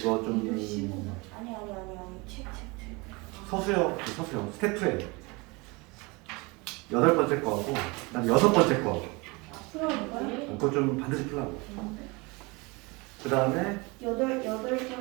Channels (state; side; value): quieter; left; 26.4 dB